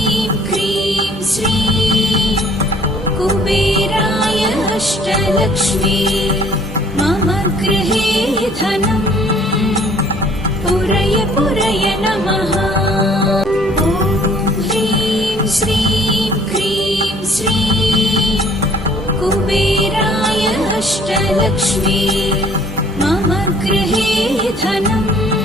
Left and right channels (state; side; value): normal; both; correlation 0.56